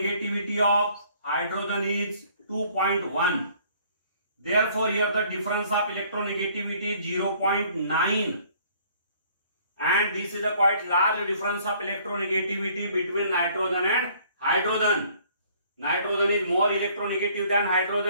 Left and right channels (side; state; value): both; inverted; correlation -0.58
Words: of hydrogen is 2.1. Therefore, here the difference of electronegativity is 0.9. And this is a quite large difference of electronegativity between nitrogen and hydrogen. Nitrogen is more electronegative than